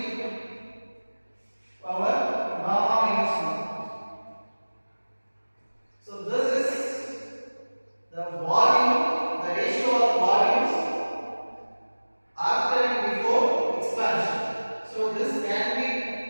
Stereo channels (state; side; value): inverted; both; correlation -1.00